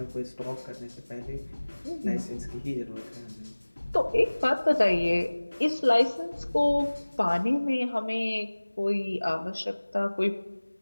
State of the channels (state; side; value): inverted; both; correlation -1.00